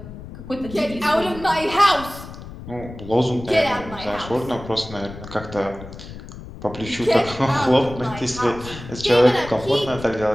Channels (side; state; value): left; noise; rumble, 13 dB below the sound